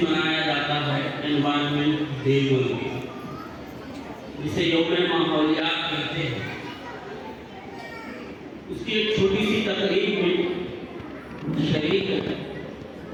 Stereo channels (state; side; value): identical; both; correlation 1.00